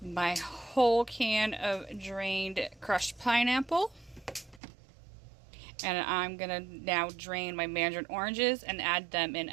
my whole can of drained crushed pineapple. And I'm going to now drain my mandarin oranges and add them in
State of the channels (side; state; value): left; drops out; at 4.6 s